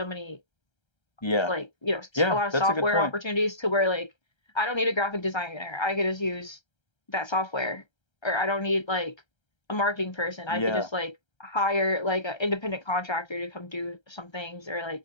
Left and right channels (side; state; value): right; late; 1.3 ms